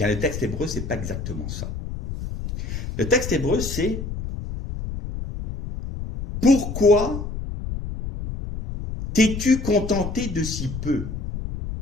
le texte hébreu, c'est pas exactement ça. Le texte hébreu, c'est « Pourquoi t'es-tu contenté de si peu ?»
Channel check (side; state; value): left; noise; rumble, 7 dB below the sound